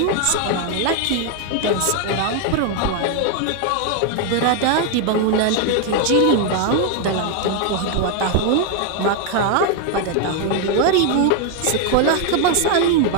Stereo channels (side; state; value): both; different; correlation 0.01